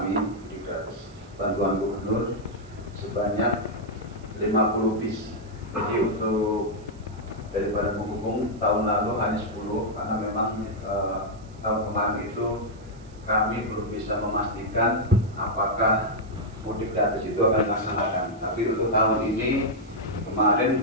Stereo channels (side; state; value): right; noise; hiss, 28 dB below the sound